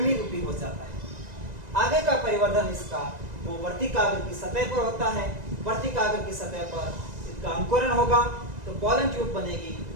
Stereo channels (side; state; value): left; late; 1.9 ms